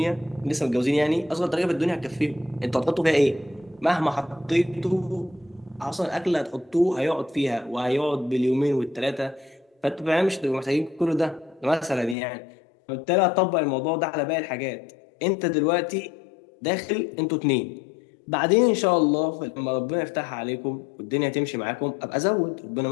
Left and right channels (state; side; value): drops out; right; at 12.2 s